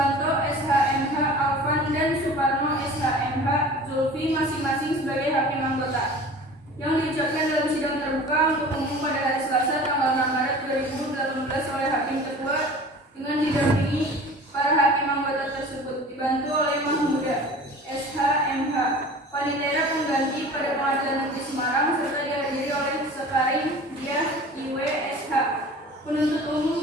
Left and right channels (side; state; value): both; normal; correlation 0.41